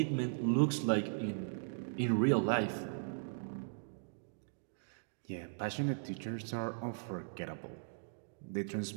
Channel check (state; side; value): silent; left; digital silence